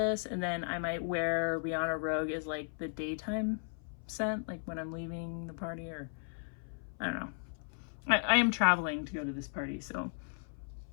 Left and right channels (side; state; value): right; silent; 54 dB below the other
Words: and then I might wear Rihanna Rogue as like the daytime scent, like when I'm leaving the party, or I don't know. I am traveling to go to this party, so.